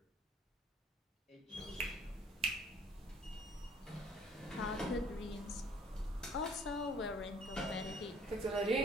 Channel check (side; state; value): both; normal; correlation 0.56